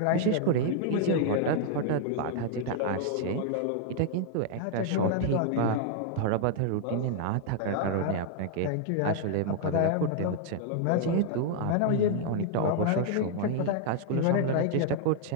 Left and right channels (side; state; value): both; different; correlation 0.00